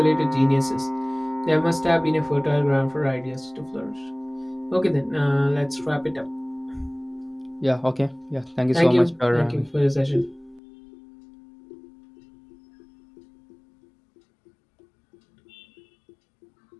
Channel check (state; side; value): drops out; right; at 10.6 s